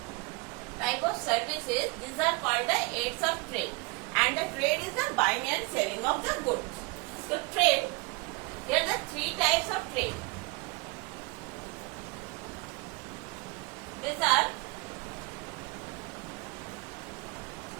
type of services. These are called the aids of trade, and the trade is the buying and selling of the goods. So trade, there are the three types of trade. These are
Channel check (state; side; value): quieter; left; 26.6 dB